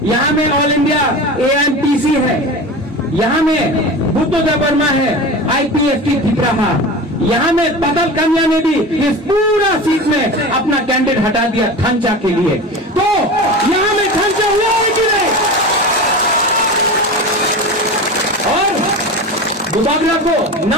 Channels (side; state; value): both; normal; correlation 0.30